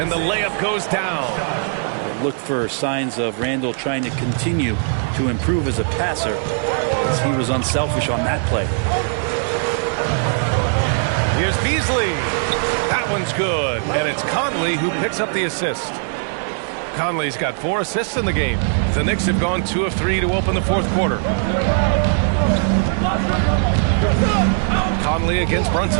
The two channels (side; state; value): left; silent; 62 dB below the other